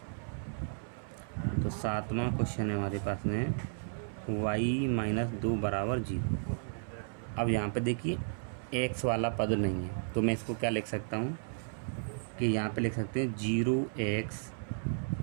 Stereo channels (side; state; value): left; silent; 55 dB below the other